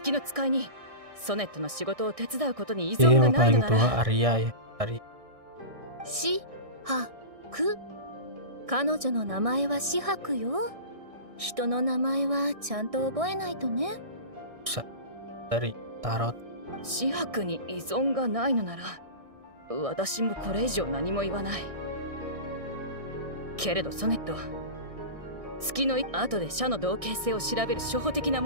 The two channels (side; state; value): left; late; 1.6 ms